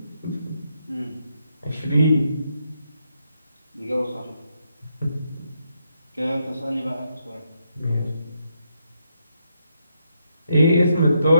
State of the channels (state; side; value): inverted; both; correlation -0.80